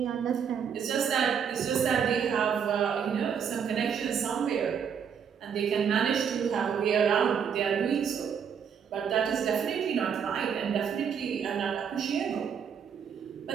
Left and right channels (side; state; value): left; quieter; 7.4 dB